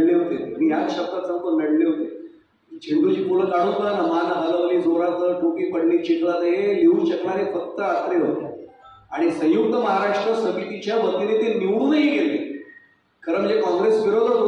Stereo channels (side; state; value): both; identical; correlation 1.00